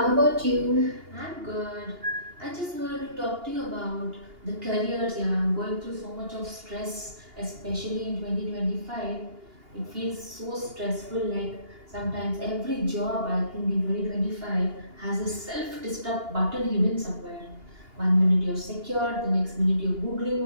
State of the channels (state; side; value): late; left; 2.8 ms